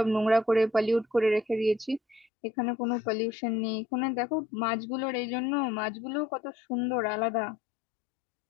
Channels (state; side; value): drops out; right; at 2.2 s